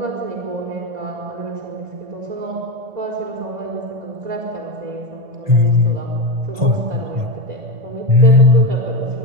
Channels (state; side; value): late; left; 1.5 ms